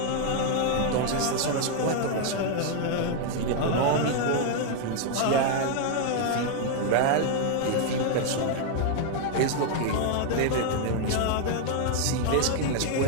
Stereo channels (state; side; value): different; both; correlation 0.00